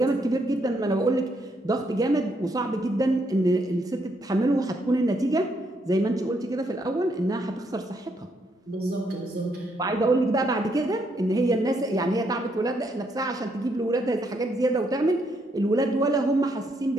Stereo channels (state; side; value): normal; both; correlation 0.75